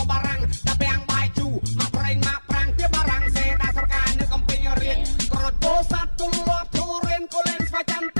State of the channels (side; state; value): both; inverted; correlation -1.00